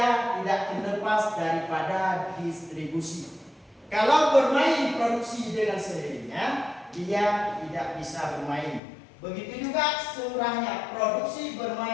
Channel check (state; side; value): drops out; right; at 8.8 s